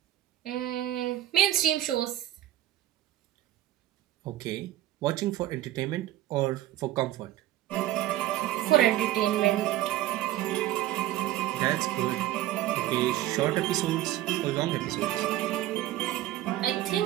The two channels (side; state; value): left; quieter; 14.0 dB